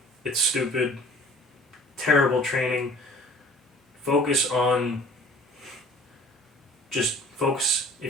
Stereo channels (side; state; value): both; normal; correlation 0.49